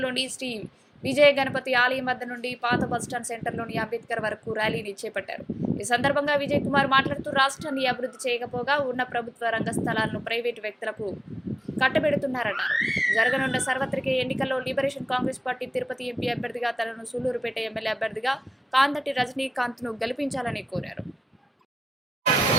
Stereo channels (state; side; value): normal; both; correlation 0.94